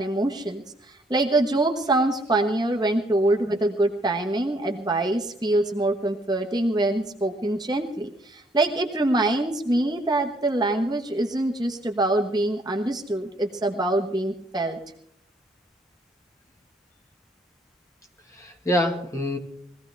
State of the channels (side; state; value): both; normal; correlation 0.66